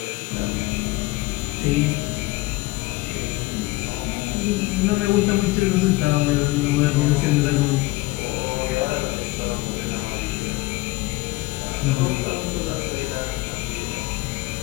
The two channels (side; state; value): right; quieter; 20.9 dB